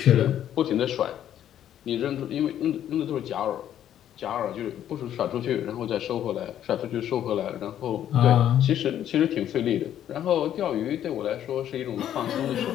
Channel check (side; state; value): right; quieter; 10.8 dB